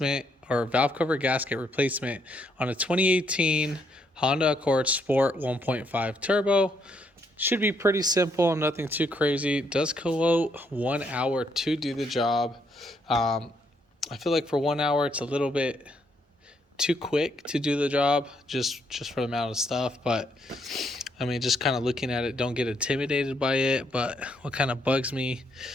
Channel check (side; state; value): both; normal; correlation 0.74